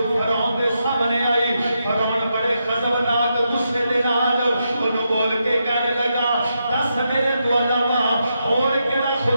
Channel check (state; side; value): inverted; both; correlation -0.83